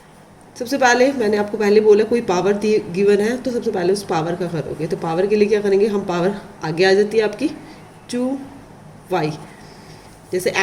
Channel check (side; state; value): both; identical; correlation 1.00